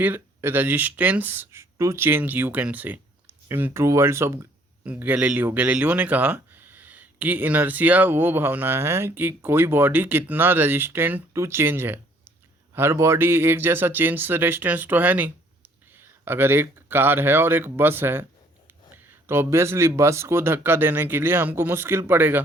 resistance to change you can say in true words of Galileo ने कहा कि इनर्शिया वो भावना है कि कोई बॉडी कितना रेजिस्टेंट टू चेंज है। हर बॉडी एक जैसा चेंज से रेजिस्टेंस तो है नहीं। अगर एक कार है और एक बस है तो ऑब्वियसली बस को धक्का देने के लिए हमको मुश्किल पड़ेगा,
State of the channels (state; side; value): normal; both; correlation 0.61